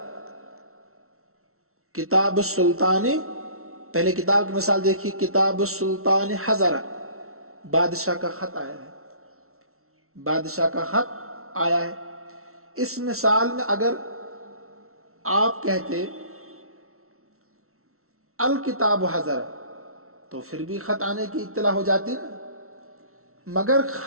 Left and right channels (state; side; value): late; left; 0.63 ms